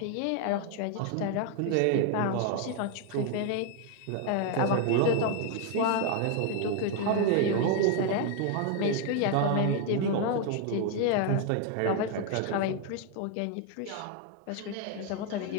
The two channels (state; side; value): different; both; correlation 0.01